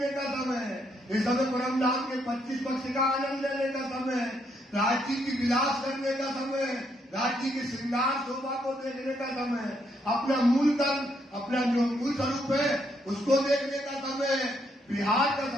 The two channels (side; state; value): both; normal; correlation 0.74